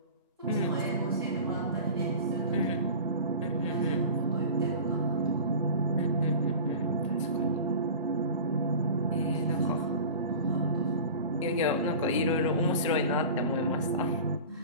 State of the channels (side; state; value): both; inverted; correlation -0.36